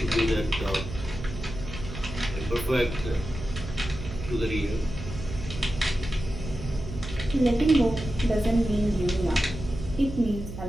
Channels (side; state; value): right; noise; hum, 10 dB below the sound